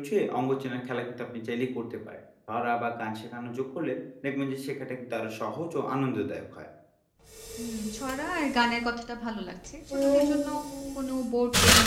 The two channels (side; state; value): both; identical; correlation 1.00